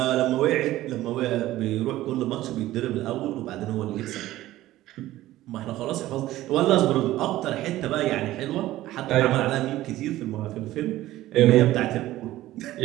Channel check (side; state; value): left; quieter; 15.5 dB